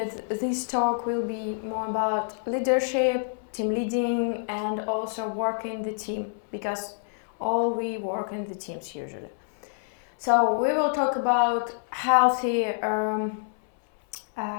this talk will be more about leadership, team leading, and also work in the team, because all we work in the teams usually. So we will talk about healthy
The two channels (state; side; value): silent; right; 60 dB below the other